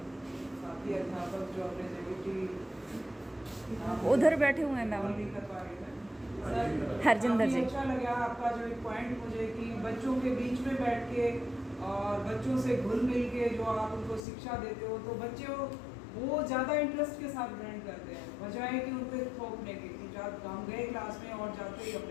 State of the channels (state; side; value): drops out; right; at 14.2 s